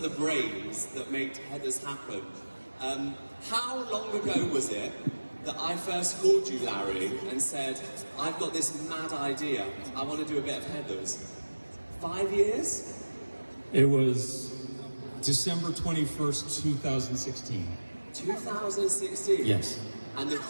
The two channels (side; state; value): both; inverted; correlation -1.00